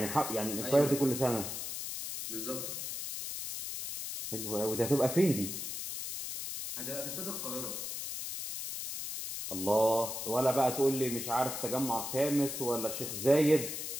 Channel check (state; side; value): noise; left; hiss, 5 dB below the sound